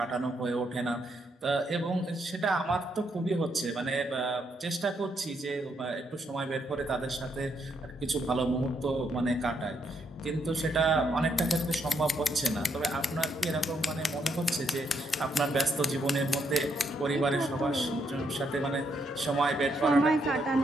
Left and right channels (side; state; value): both; normal; correlation 0.76